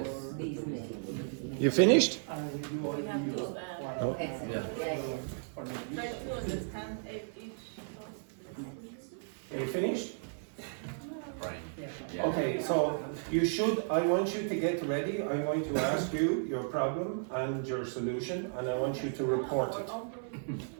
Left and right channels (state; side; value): silent; left; 55 dB below the other